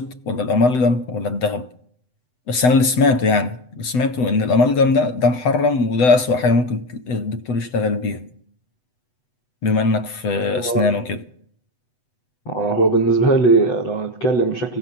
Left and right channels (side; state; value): right; late; 8.0 ms